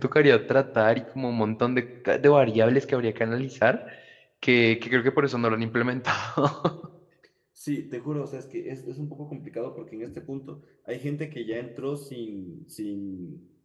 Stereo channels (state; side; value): identical; both; correlation 1.00